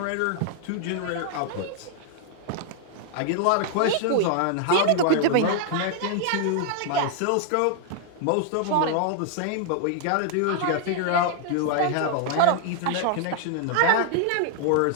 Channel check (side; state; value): both; different; correlation 0.00